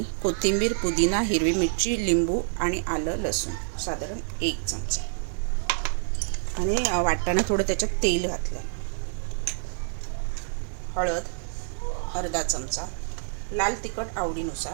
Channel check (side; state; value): left; silent; 60 dB below the other